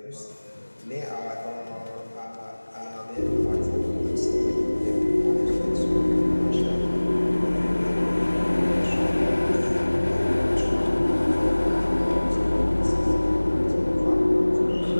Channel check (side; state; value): both; inverted; correlation -1.00